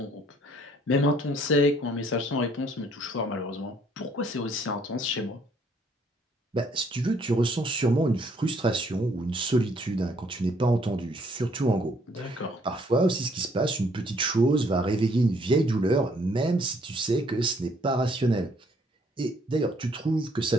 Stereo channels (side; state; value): both; normal; correlation 0.65